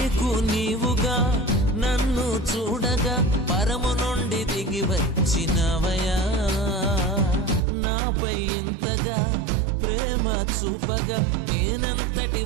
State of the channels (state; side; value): drops out; left; at 7.6 s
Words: నీవుగా నన్ను చూడగా పరము నుండి దిగి వచ్చినవయా. నాపై ఇంతగా ప్రేమ చూపగా నేనంతటి